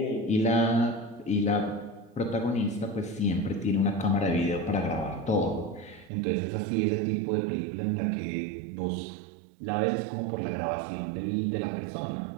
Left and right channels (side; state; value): left; drops out; at 6.1 s